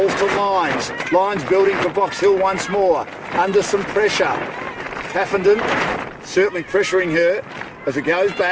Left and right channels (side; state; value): both; identical; correlation 1.00